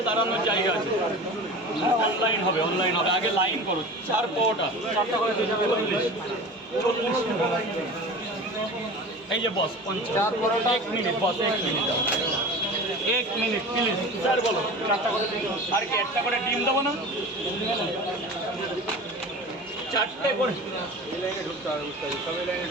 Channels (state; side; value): normal; both; correlation 0.35